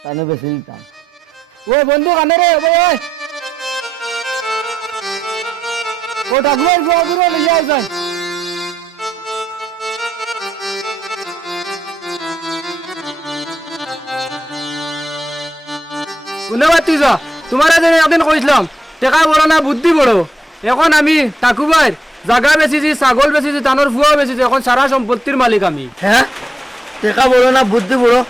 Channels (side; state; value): both; normal; correlation 0.83